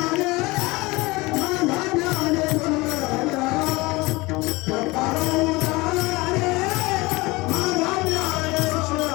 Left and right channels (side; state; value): right; quieter; 22.6 dB